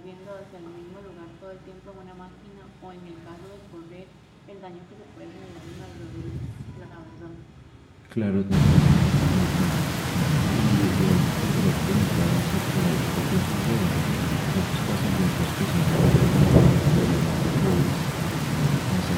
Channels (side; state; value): both; identical; correlation 1.00